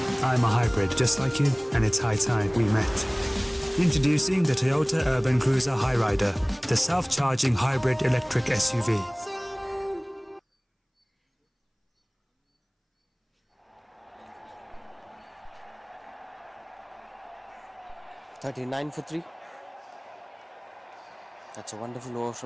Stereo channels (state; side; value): identical; both; correlation 1.00